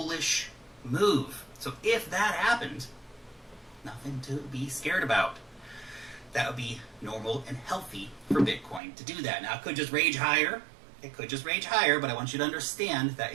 move. So if that happened, nothing to be scared about. That would be normal and healthy for Bitcoin to do that. Now, it could just rage higher. It could just rage higher, but I want you to understand that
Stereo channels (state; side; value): drops out; left; at 8.8 s